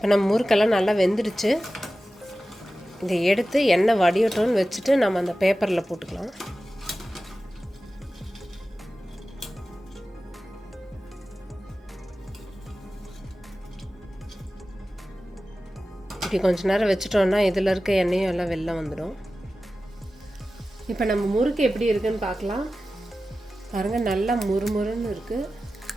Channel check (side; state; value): both; normal; correlation 0.95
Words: நம்ம முறுக்கெல்லாம் நல்லா வெந்துடுச்சு. இதை எடுத்து எண்ணெய் வடியட்டோன்னு வச்சுட்டு நம்ம அந்த பேப்பரில் போட்டுக்கலாம். இப்படி கொஞ்ச நேரம் வச்சுட்டோன்னா இதில் இருக்க எண்ணெயும் எல்லாம் வெளில வந்துடும். இப்போ நம்ம முறுக்கு எப்படி இருக்குன்னு பார்க்கலாம். பாருங்கள், நல்லா முறுமுறுன்னு இருக்குது.